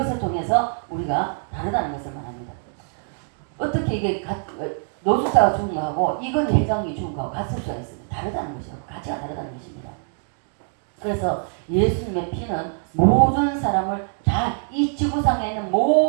통해서 우리가 다르다는 것을 말합니다. 어떻게 이게 노숙자가 죽은 거하고 이건희 회장이 죽은 거하고 같을 수가 있습니다. 다르다는 것이요. 가치가 다르다는 것입니다. 그래서 예수님의 피는 모든 사람을 다 이 지구상에 있는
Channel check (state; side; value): silent; left; 59 dB below the other